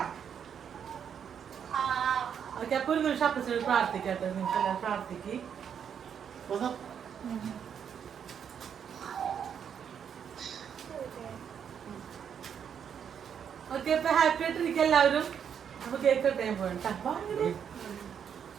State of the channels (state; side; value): quieter; left; 7.9 dB